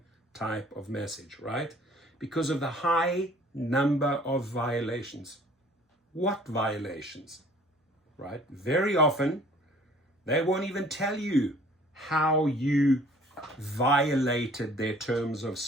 type of message, right? Because of the high number of violations. What violations? Right? Very often, they won't even tell you how you violated their terms of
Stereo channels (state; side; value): normal; both; correlation 0.53